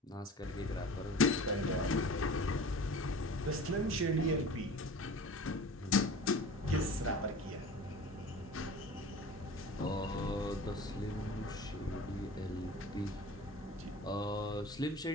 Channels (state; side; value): normal; both; correlation 0.39